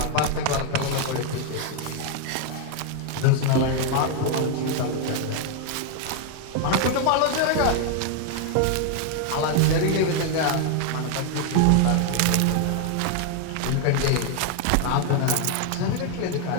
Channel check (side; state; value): both; different; correlation 0.00